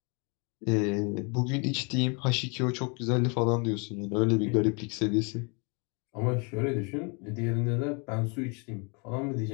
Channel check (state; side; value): quieter; right; 33.2 dB